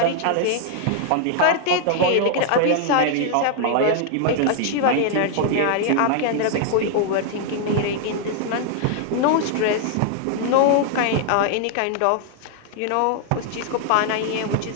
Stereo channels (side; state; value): both; different; correlation -0.01